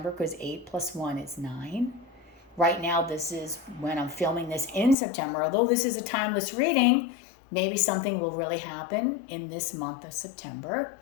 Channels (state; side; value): drops out; right; at 5.0 s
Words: because 8 plus 1 is 9. Right now, this is when I'm filming this in September. Although this is a timeless reading, maybe something will really happen in this month of September.